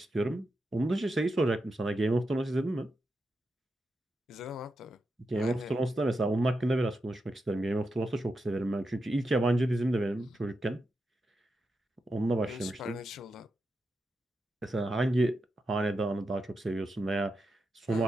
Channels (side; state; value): both; normal; correlation 0.87